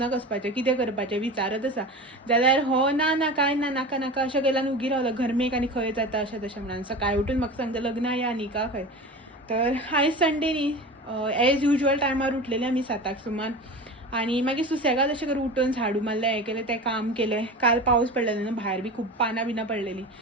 वचपाचें, कितें करपाचें विचारत आसा. जाल्यार हो ना कांय ना, नाका अशें केल्यान उगी रावलो घरमेक आनी खंय जाता अशें तशें म्हणून. सकाळीं उठून म्हाका सांगता लग्ना या न्ही का खंय. तर आयज संडे न्ही, एज युजल टायमार उठलेलें आमी 7 सुमार आनी मागीर सुसेगाद अशें करून उठून झाडू मारलें, हें केलें तें काम केलें. काल पावस पडलेलो न्हू, भायर बी खूब पानां बिनां पडलेलीं.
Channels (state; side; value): normal; both; correlation 0.31